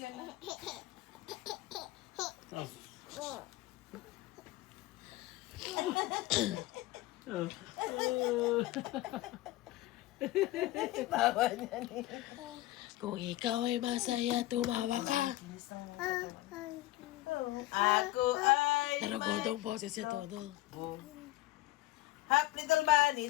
Tawa niya ni. Kung ikaw ay masaya, tumawa ka. Ako ay Naragodong boses siya todo. hap little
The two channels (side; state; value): right; quieter; 17.5 dB